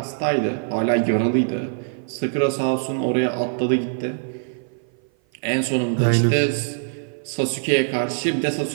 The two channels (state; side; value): silent; left; 56 dB below the other